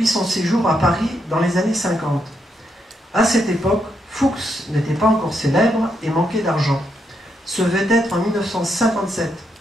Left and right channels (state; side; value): normal; both; correlation 0.79